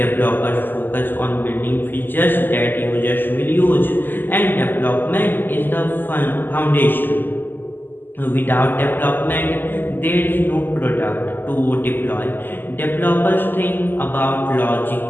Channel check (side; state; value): right; late; 0.092 ms